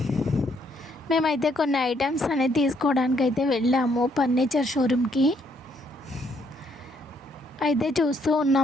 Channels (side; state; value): both; normal; correlation 0.71